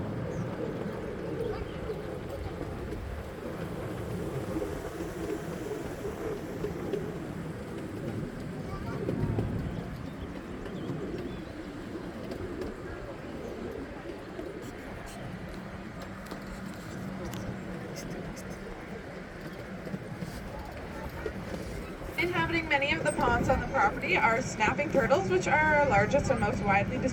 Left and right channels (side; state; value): both; identical; correlation 1.00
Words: Inhabiting many of the ponds on the property are snapping turtles, which are our largest and most widely